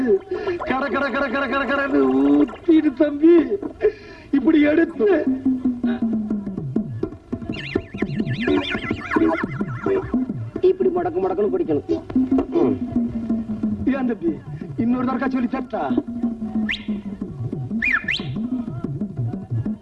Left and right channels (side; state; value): both; identical; correlation 1.00